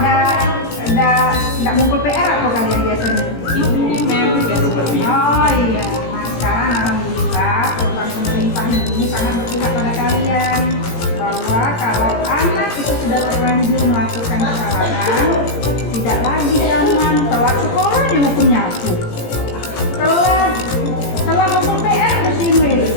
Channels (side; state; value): right; late; 17 ms